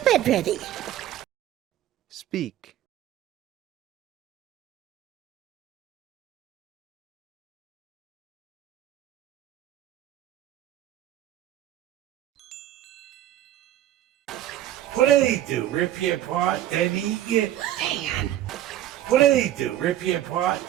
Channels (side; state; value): left; quieter; 12.6 dB